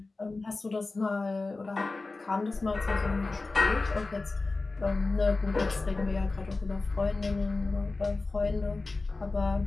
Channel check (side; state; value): right; quieter; 3.5 dB